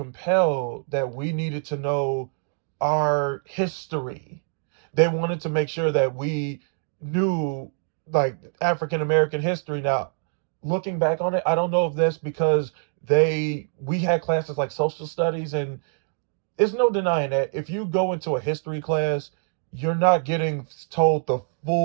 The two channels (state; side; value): silent; left; 62 dB below the other